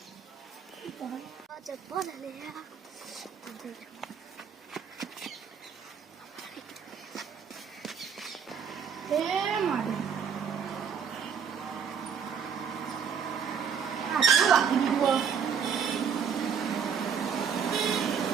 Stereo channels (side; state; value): left; quieter; 7.1 dB